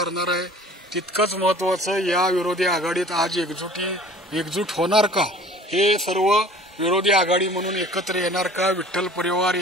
आहे तितकंच महत्त्वाचं या विरोधी आघाडीत आज एकजूट होणार का हे सर्व विरोधी आघाडी म्हणून एकत्र येणार का, विठ्ठल परिवार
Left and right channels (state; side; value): normal; both; correlation 0.47